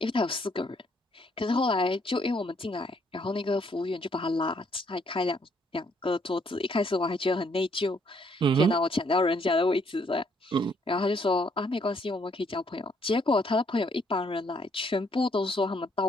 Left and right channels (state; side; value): normal; both; correlation 0.69